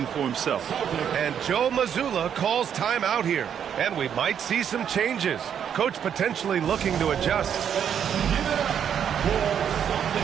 for himself. And Joe Mazzulla calls timeout here. And we might see some changes. Coach potentially looking to adjust.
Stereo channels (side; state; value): left; quieter; 8.5 dB